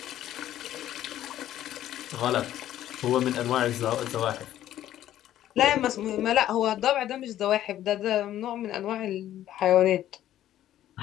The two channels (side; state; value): right; quieter; 12.5 dB